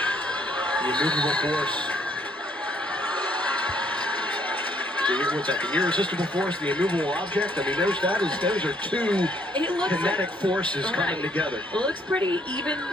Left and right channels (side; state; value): both; normal; correlation 0.66